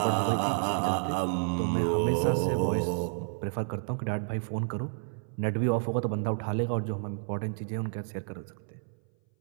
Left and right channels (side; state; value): left; silent; 58 dB below the other